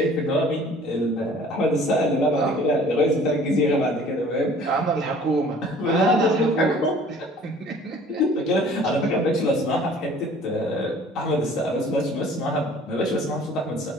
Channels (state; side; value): normal; both; correlation 0.51